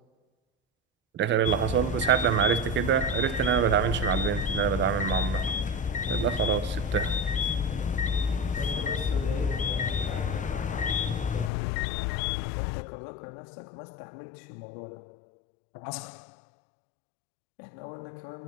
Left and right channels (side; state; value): right; drops out; at 11.5 s